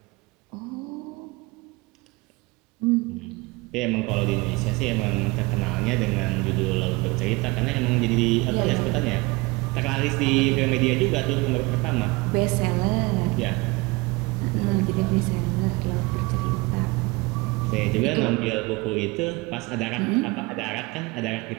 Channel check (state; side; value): quieter; left; 24.2 dB